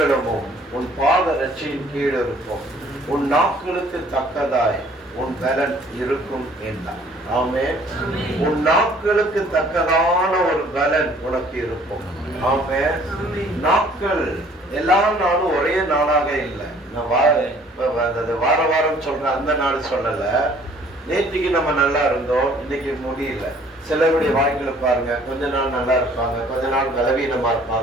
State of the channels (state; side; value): normal; both; correlation 0.57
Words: உன் பாதரட்சியின் கீழ் இருக்கும், உன் நாட்களுக்கு தக்கதாய் உன் பலன் இருக்கும் என்றான். ஆமென். உன் நாட்களுக்கு தக்கதான ஒரு பலன் உனக்கு இருக்கும். ஆமென். நாட்கள் எல்லா நாளும் ஒரே நாளாக இல்லை. நான் வார வாரம் சொல்றேன், அந்த நாள் சொல்லல. நேற்றுக்கு நம்ம நல்லா இருந்தோம், இன்னைக்கு முடியல. சிலருடைய வாழ்க்கையில பாருங்க, கொஞ்ச நாள் நல்லா இருப்பாங்க, கொஞ்ச நாள் பலவீனமா